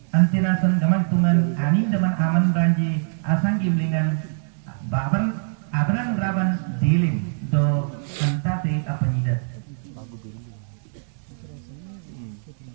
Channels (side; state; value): left; silent; digital silence